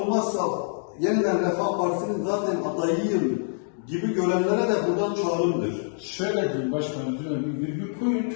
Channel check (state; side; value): silent; right; digital silence